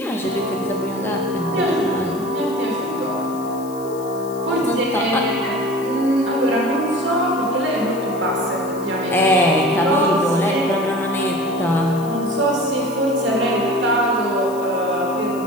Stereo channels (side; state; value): left; noise; hiss, 20 dB below the sound